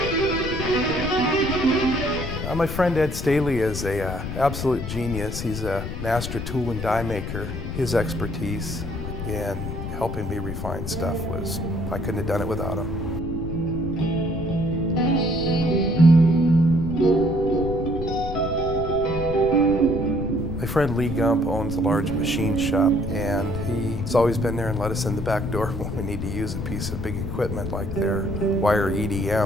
My friend Ed Staley is an absolute genius. He's a master tool and die maker. His expertise in helping me refine stuff was, I couldn't have done it without him. My friend Lee Gump owns a large machine shop, and he's always been there and let us in the back door when we need to use a piece of big equipment like their wire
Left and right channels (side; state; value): left; noise; rumble, 5 dB below the sound